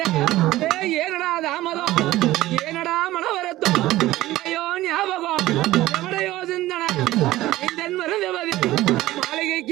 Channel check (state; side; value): quieter; left; 16.4 dB